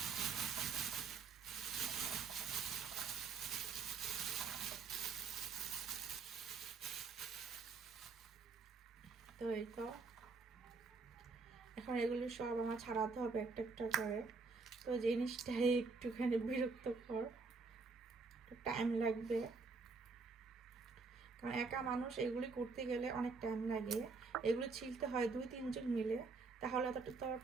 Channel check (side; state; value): left; quieter; 4.5 dB